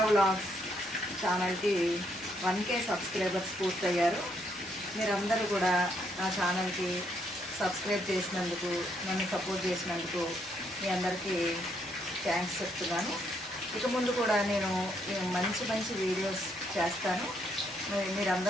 వ్లాగ్స్ ఛానల్కి 1K సబ్స్క్రైబర్స్ పూర్తయ్యారు. మీరందరూ కూడా నా ఛానల్కి సబ్స్క్రైబ్ చేసినందుకు, నన్ను సపోర్ట్ చేసినందుకు మీ అందరికీ థ్యాంక్స్ చెప్తున్నాను. ఇక ముందు కూడా నేను మంచి మంచి వీడియోస్ చేస్తాను.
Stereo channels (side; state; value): both; normal; correlation 0.73